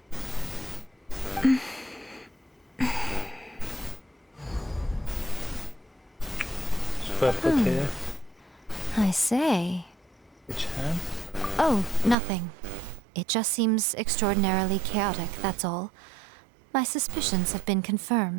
Superpotere? I say. Che c'è? Oh, nothing. It just seems extraordinarily chaotic, that's all. My suspicions have been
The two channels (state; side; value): drops out; left; at 12.2 s